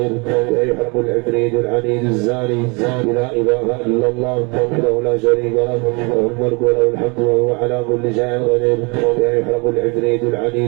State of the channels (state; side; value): quieter; left; 30.3 dB